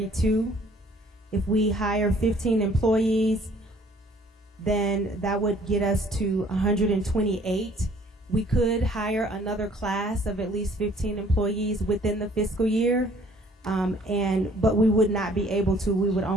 If we hire 15 employees, then that would get us to 128. We could hire another class of at least 15 employees within the fiscal year, but we would not be able to. We would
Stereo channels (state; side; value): normal; both; correlation 0.58